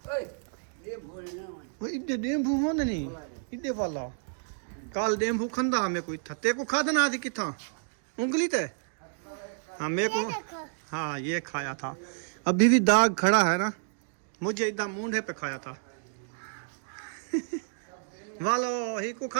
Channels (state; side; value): silent; left; digital silence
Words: इधे डेम्बू हो नहीं, इधे वाला काल डेम्बू खंदा हमें कोई था, ते को खादा ना थी किथा उंगली ते। हाँ मेरे को, हाँ ये खाया था, अभी भी दाग खड़ा है ना, मुझे इधर मूंढे पे खाया था। वालो ही को